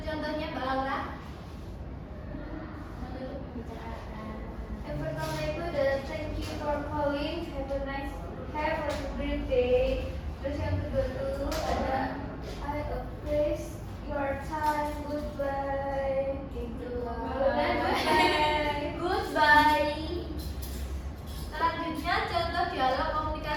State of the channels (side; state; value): both; identical; correlation 1.00